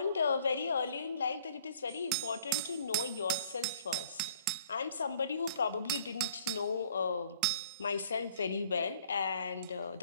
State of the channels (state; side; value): inverted; both; correlation -0.56